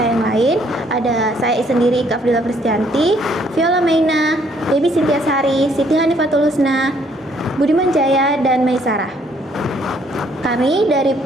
yang lain. Ada saya sendiri, Ika Afdila Pristianti, Viola Maina, Debbie Cynthia Sari, Siti Hanifatul Husna, Budiman Jaya, dan Maisarah. Kami dari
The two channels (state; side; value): normal; both; correlation 0.66